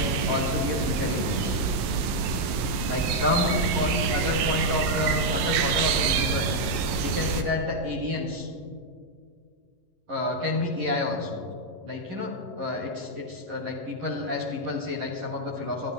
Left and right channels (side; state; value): left; late; 11 ms